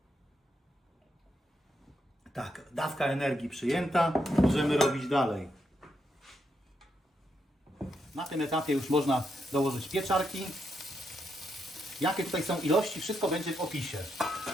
Tak, dawka energii przyjęta. Możemy robić dalej. Na tym etapie już można dołożyć pieczarki. Jakie tutaj są ilości, wszystko będzie w opisie.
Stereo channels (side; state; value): both; normal; correlation 0.81